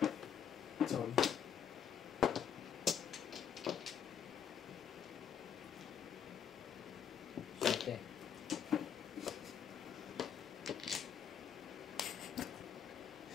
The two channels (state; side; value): quieter; right; 8.1 dB